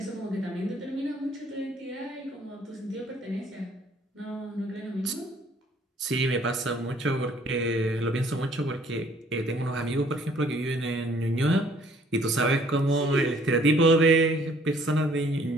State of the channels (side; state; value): both; normal; correlation 0.59